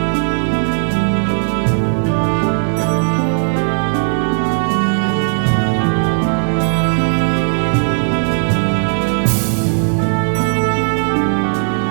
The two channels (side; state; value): left; silent; digital silence